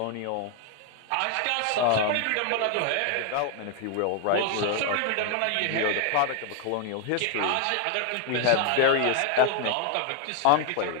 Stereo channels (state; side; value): different; both; correlation 0.00